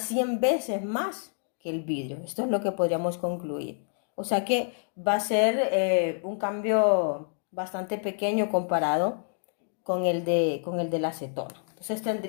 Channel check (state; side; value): silent; right; 57 dB below the other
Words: 100 veces más que el vidrio. Esto es lo que podríamos concluir. O sea que va a ser un cambio bastante pequeño comparado con el de la acetona. Entonces